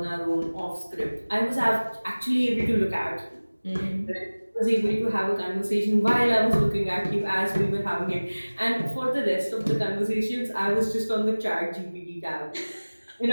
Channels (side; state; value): both; inverted; correlation -1.00